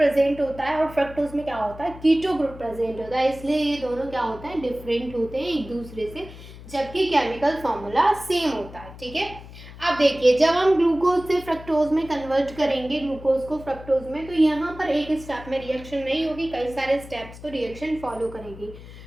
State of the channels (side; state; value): left; noise; hum, 16 dB below the sound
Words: होता है, और फ्रक्टोज में क्या होता है, कीटो ग्रुप प्रेजेंट होता है. इसलिए ये दोनों क्या होते हैं, डिफरेंट होते हैं एक दूसरे से, जबकि केमिकल फॉर्मूला सेम होता है. ठीक है. अब देखिए, जब हम ग्लूकोज से फ्रक्टोज में कन्वर्ट करेंगे, ग्लूकोज को फ्रक्टोज में, तो यहाँ पर एक स्टेप में रिएक्शन नहीं होगी, कई सारे स्टेप्स को रिएक्शन फॉलो करेगी.